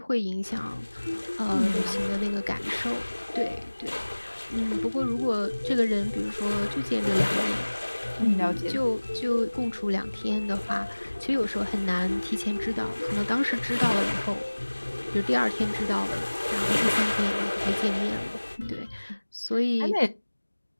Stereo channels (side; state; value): both; inverted; correlation -1.00